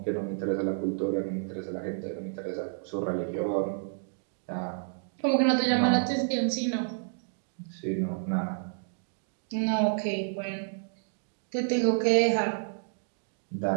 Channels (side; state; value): left; silent; digital silence